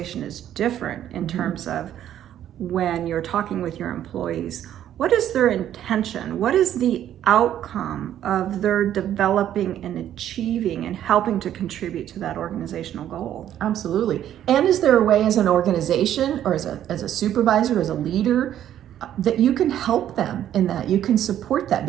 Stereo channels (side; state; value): left; quieter; 11.1 dB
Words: is different in terms of when you're talking with your employees. What is their intention? What is the outcome of their developing and achieving and helping to contribute to that organizational goal? Absolutely. And is there a way as an organization or as a supervisor, as a leader, that you can help them in that, you can support that,